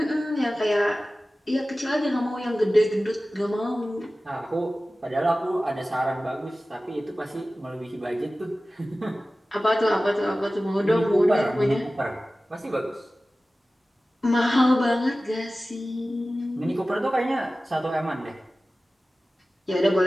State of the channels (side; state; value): both; normal; correlation 0.96